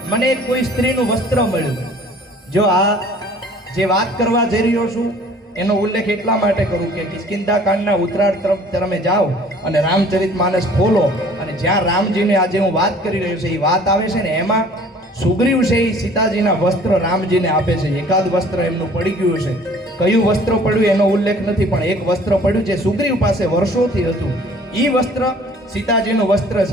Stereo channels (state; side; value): normal; both; correlation 0.52